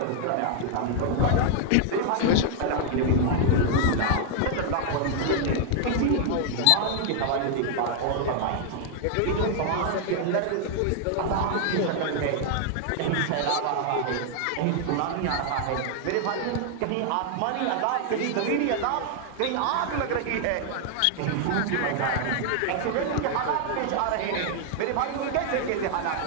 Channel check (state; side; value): different; both; correlation 0.00